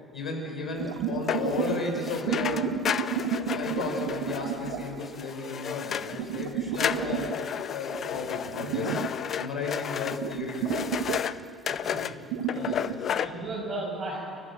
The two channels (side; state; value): both; normal; correlation 0.36